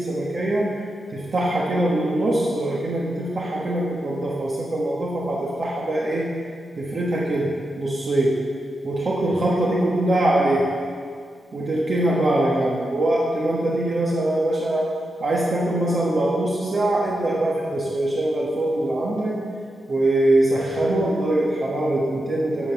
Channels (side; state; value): both; normal; correlation 0.87